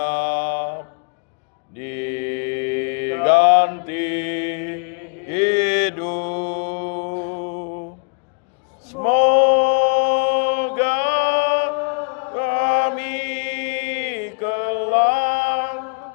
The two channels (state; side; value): quieter; right; 37.5 dB